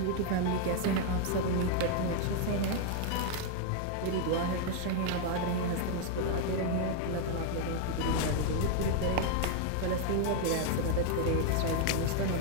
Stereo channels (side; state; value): both; different; correlation 0.00